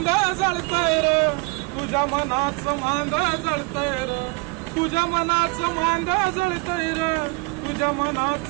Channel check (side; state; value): left; quieter; 27.4 dB